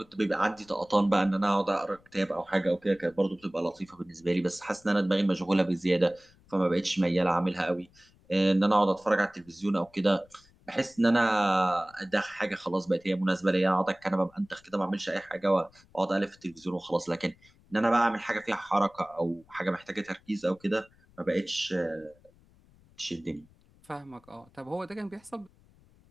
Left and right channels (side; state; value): left; noise; rumble, 29 dB below the sound